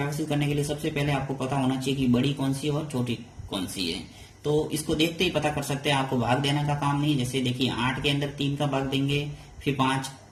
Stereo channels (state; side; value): identical; both; correlation 1.00